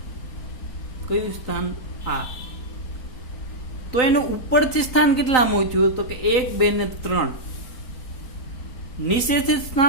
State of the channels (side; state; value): right; late; 3.9 ms